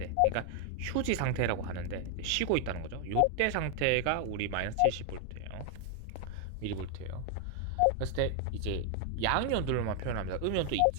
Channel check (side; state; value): both; different; correlation 0.00